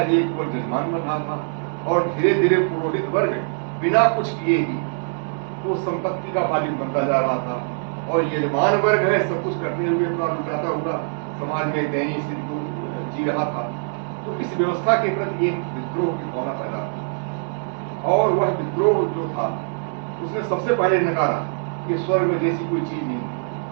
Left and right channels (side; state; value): left; silent; 63 dB below the other